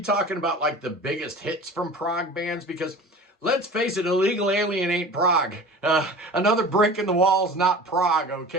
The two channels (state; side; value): normal; both; correlation 0.38